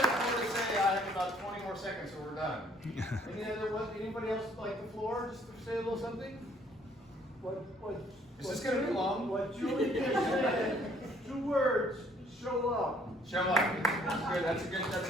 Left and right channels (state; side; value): normal; both; correlation 0.62